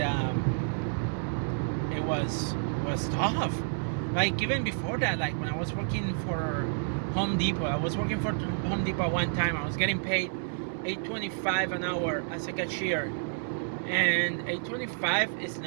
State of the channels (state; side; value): silent; left; 58 dB below the other